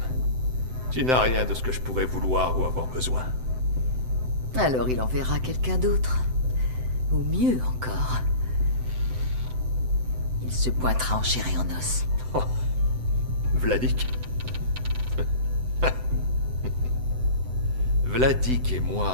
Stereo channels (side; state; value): left; late; 7.8 ms